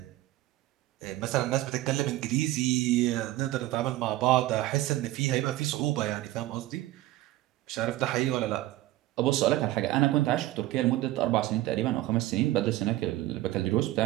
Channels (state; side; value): quieter; left; 16.3 dB